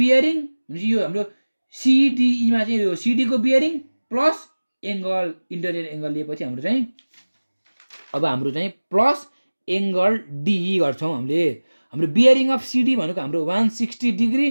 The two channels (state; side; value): inverted; both; correlation -1.00